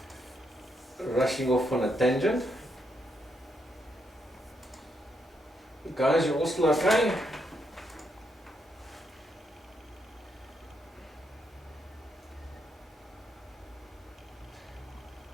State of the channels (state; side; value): normal; both; correlation 0.79